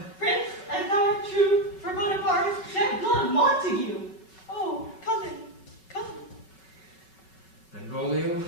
Prince, as thou art true, for Bonaparte shed blood, Montague! Oh, cousin! Benvolio,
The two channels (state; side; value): late; right; 5.3 ms